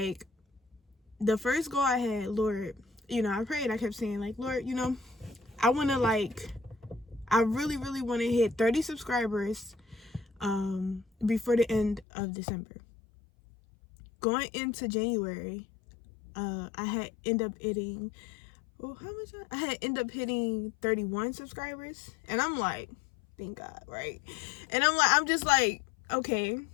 the first goal I had, Lord, I prayed. I kept saying, like, Lord, I want to, like, I really, really want to hit 30 subscribers before the end of December. Going into January, I had end up hitting, I had end up hitting 31 subscribers. And I'm like, thank God, right? And I'm just like, okay,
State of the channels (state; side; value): drops out; right; at 12.1 s